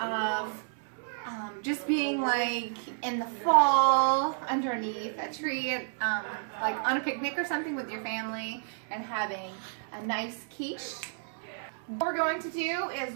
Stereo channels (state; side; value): silent; left; 57 dB below the other